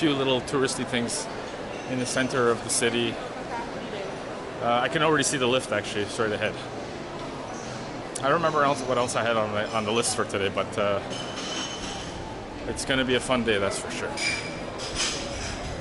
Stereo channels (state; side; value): identical; both; correlation 1.00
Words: little touristy things in the center of the city. I can already see the lift actually straight ahead. I don't remember what else I had on the list for today, but it's gonna be a fun day, that's for sure.